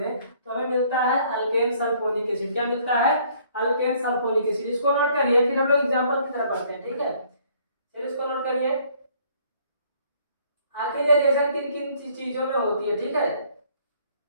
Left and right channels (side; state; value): both; inverted; correlation -0.61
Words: तो हमें मिलता है अल्केन सल्फोनिक एसिड। क्या मिलता है, अल्केन सल्फोनिक एसिड। इसको नोट करिए, फिर हम लोग एग्जांपल की तरफ पढ़ते हैं। ठीक है, फिर इसको नोट करिए, आखिर ये रिएक्शन किन किन चीजों में होती है। ठीक है,